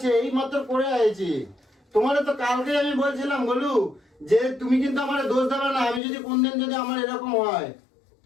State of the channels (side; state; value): right; drops out; at 6.0 s